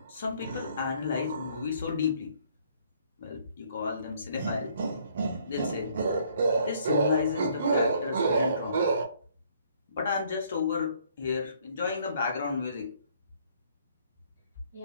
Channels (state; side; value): inverted; both; correlation -0.63